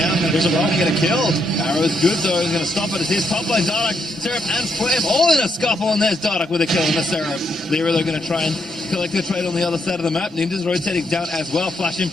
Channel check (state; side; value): normal; both; correlation 0.77